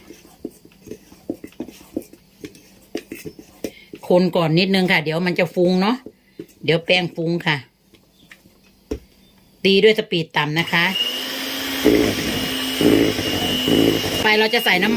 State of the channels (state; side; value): identical; both; correlation 1.00